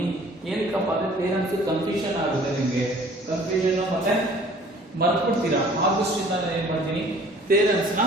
ಏನಕ್ಕಪ್ಪ ಅಂದ್ರೆ ಥಿಯರಮ್ಸ್ ಕನ್ಫ್ಯೂಷನ್ ಆಗುತ್ತೆ, ನಿಮಗೆ ಕನ್ಫ್ಯೂಷನ್ ಮತ್ತೆ ಮರ್ತ್ಬಿಡ್ತೀರಾ. ಆದಷ್ಟಿಂದ ನಾನು ಏನ್ ಮಾಡ್ತೀನಿ, ಥಿಯರಮ್ಸ್ ನ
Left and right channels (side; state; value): both; normal; correlation 0.52